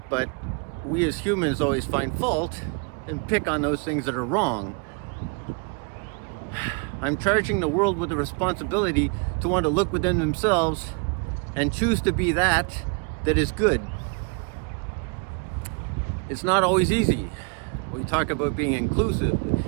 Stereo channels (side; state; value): left; quieter; 33.7 dB